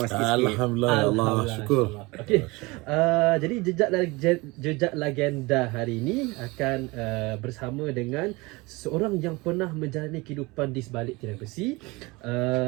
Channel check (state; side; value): quieter; left; 23.9 dB